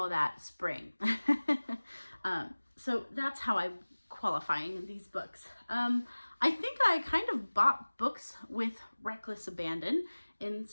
that spring. So that's how I'm qualifying these books. I think I kind of bought books with reckless abandon in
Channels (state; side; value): inverted; both; correlation -1.00